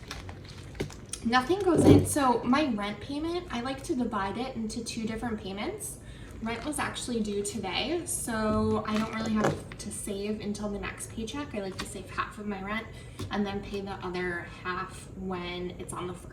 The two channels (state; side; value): identical; both; correlation 1.00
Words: nothing goes in. So my rent payment, I like to divide it into 2 different payments. Rent was actually due today, so I don't really have to save until the next paycheck. I like to save half of my rent and then pay the other half when it's on the